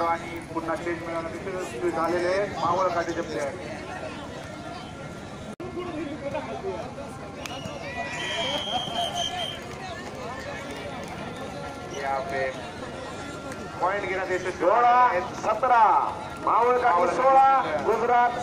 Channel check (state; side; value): identical; both; correlation 1.00